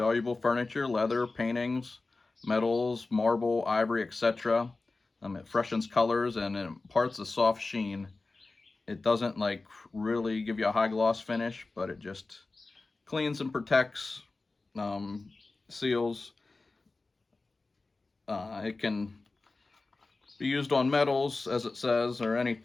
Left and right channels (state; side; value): quieter; right; 3.5 dB